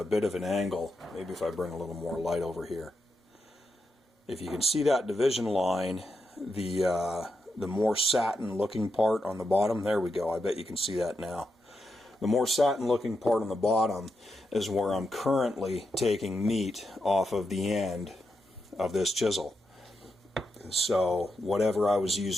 bit of an angle. Maybe if I bring a little more light over here. If you can see that division line, the more satin looking part on the bottom, there we go, I bet you can see that now. The more satin looking part on the bottom is where I'm currently taking meat off of the end of this chisel. So whatever I was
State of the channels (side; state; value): both; normal; correlation 0.85